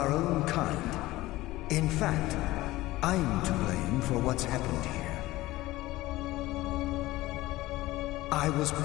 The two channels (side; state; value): right; quieter; 17.9 dB